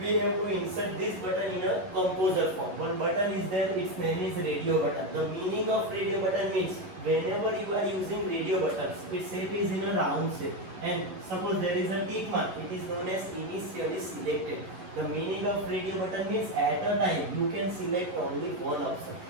have to insert this button in a Kompozer form. One button is there, its name is radio button. The meaning of radio button means whenever you are using radio buttons, its shape is in a round shape. And suppose there is a tick mark, it is known as initially selected. The meaning of radio button means at a time you can select only one option.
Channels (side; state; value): left; late; 11 ms